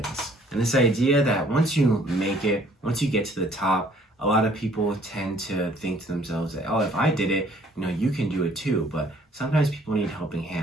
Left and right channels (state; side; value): normal; both; correlation 0.59